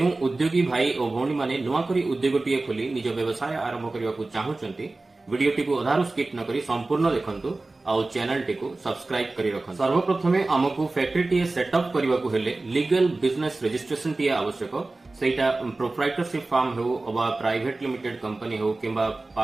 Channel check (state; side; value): quieter; left; 3.2 dB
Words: उद्योगी भाई और भौणी माने नुआ करी उद्योगटीए खोली निज व्यवसाय आरंभ करने को चाहूंती वीडियोटी को अधारू स्किप न करी संपूर्ण देखंतु आउ चैनल टी को सब्सक्राइब करी रखन। सर्वप्रथमे आमको फैक्ट्री टी सेटअप करने को हेले लीगल बिजनेस रजिस्ट्रेशन टी आवश्यक। सेटा प्रोप्राइटरशिप फार्म हो अबा प्राइवेट लिमिटेड कंपनी हो किंबा